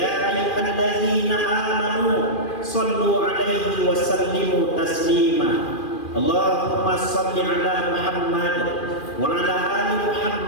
ayyuhallazina amanu shallu 'alaihi wa sallimu taslima. Allahumma shalli 'ala Muhammad wa 'ala ali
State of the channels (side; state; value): right; late; 2.4 ms